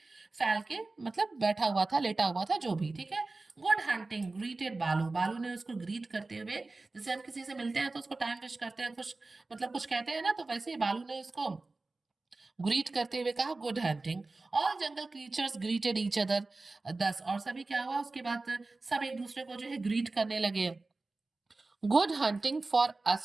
फैल के, मतलब बैठा हुआ था, लेटा हुआ था, जो भी, ठीक है। गुड हंटिंग ग्रीटेड बालू। बालू ने उसको ग्रीट करते हुए, जैसे हम किसी से मिलते हैं तो उसको टाइम विश करते हैं, कुछ मतलब कुछ कहते हैं ना, तो वैसे ही बालू ने उसको ग्रीट करते हुए कहा, गुड हंटिंग। ऑल जंगल क्रीचर्स ग्रीटेड ईच अदर। 10। और सभी क्या हुआ उसके बाद, सब एक दूसरे को जो है ग्रीट करने लगे। Good hunting for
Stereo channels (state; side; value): quieter; left; 3.4 dB